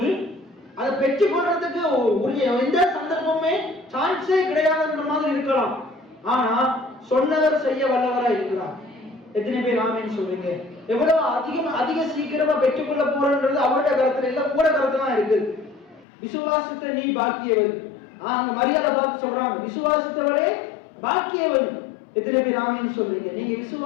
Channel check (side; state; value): right; drops out; at 16.1 s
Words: அதை பெற்றுக் கொள்றதுக்கு உரிய எந்த சந்தர்ப்பமே சான்ஸே கிடையாதுன்ற மாதிரி இருக்கலாம். ஆனா சொன்னவர் செய்ய வல்லவரா இருக்கிறார். எத்தனை பேர் ஆமேன்னு சொல்றீங்க? எவ்வளவு அதிக சீக்கிரமா பெற்றுக்கொள்ள போறன்றது அவருடைய கருத்துல இல்ல, கூட கருத்துல தான் இருக்குது. விசுவாசித்த நீ பாக்கியவன். அங்க மரியாதை பார்த்து சொல்றாங்க, விசுவாசித்தவரே பாக்கியவன். எத்தனை பேர் ஆமேன்னு சொல்றீங்க? நீங்க